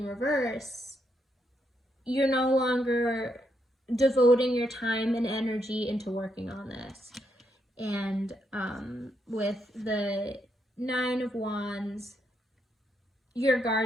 reverse, you're no longer devoting your time and energy into working on this. And with the Nine of Wands, you're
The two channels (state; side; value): normal; both; correlation 0.79